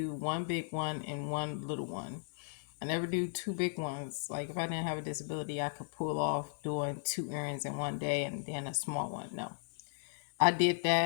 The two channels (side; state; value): right; silent; 54 dB below the other